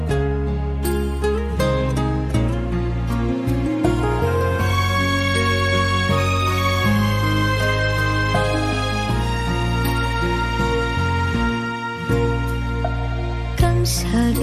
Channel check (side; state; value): both; identical; correlation 1.00